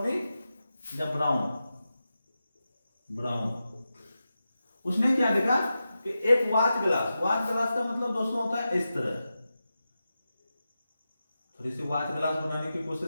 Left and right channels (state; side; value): inverted; both; correlation -0.92